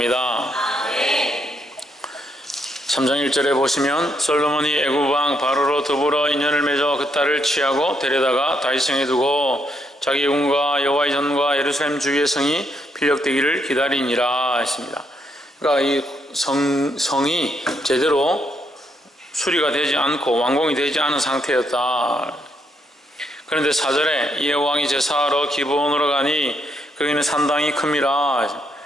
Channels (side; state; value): both; normal; correlation 0.76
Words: 3장 1절에 보시면 솔로몬이 애굽 왕 바로로 더불어 인연을 맺어 그 딸을 취하고 데려다가 다윗성에 두고 자기 궁과 여호와의 전과 예루살렘 주위의 성이 필력되기를 기다리니라 했습니다. 그러니까 이 성이 제대로 수리가 되지 않고 완공이 되지 않은 상태였다. 그런데 4절에 이에 왕이 제사하러 기브온으로 가니 거기는 산당이 큽니다.